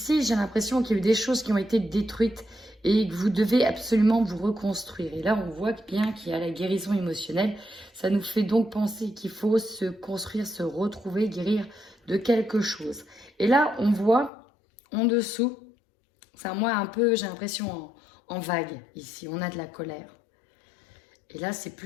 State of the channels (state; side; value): drops out; right; at 14.3 s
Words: j'ai l'impression qu'il y a eu des choses qui ont été détruites et que vous devez absolument vous reconstruire. Et là, on voit bien qu'il y a la guérison émotionnelle. Ça nous fait donc penser qu'il faut se construire, se retrouver, guérir de quelque chose. Et là, on voit en dessous, c'est moi un peu, j'ai l'impression en vague ici, on a de la colère. Et là, c'est